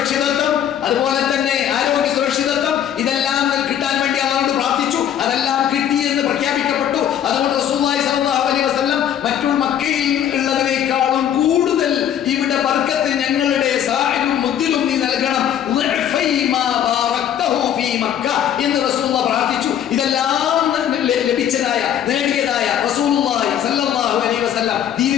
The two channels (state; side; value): quieter; right; 9.9 dB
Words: അതുപോലെ തന്നെ ആരോഗ്യ സുരക്ഷിതത്വം, ഇതെല്ലാം കിട്ടാൻ വേണ്ടി അല്ലാഹുവോട് പ്രാർത്ഥിച്ചു. അതെല്ലാം കിട്ടി എന്ന് പ്രഖ്യാപിക്കപ്പെട്ടു. അതുകൊണ്ട് റസൂലുള്ളാഹി സ്വല്ലല്ലാഹു അലൈഹി വസല്ലം മറ്റുള്ള മക്കയിൽ ഉള്ളതിനേക്കാളും കൂടുതൽ ഇവിടെ ബർക്കത്ത് ഞങ്ങളുടെ സാഹിലും മുദ്ദിലും നീ നൽകണം എന്ന് റസൂലുള്ളാഹി പ്രാർത്ഥിച്ചു. ഇതെല്ലാം ലഭിച്ചതായ, നേടിയതായ റസൂലുള്ളാഹി സ്വല്ലല്ലാഹു അലൈഹി വസല്ലം